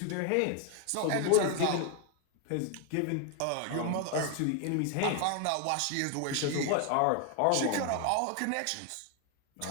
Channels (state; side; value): different; both; correlation 0.01